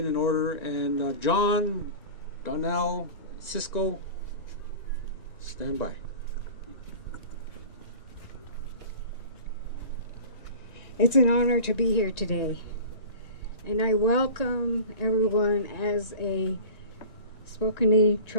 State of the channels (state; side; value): late; right; 1.9 ms